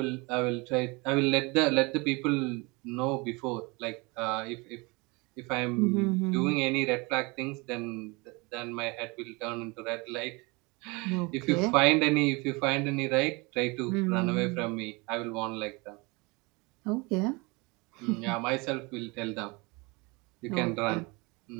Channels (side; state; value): left; quieter; 26.7 dB